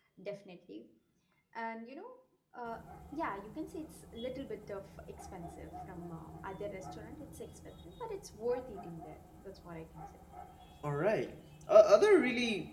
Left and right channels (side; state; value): both; identical; correlation 1.00